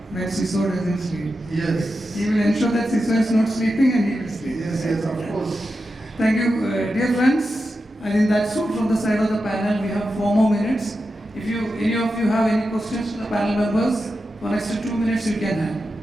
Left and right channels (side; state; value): both; normal; correlation 0.90